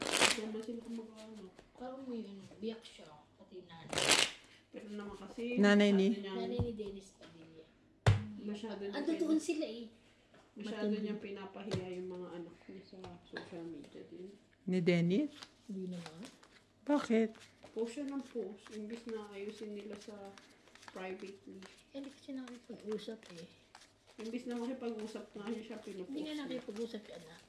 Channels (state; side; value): identical; both; correlation 1.00